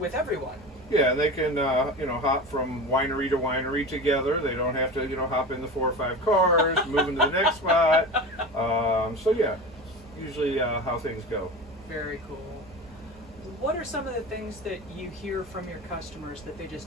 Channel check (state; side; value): noise; right; hum, 23 dB below the sound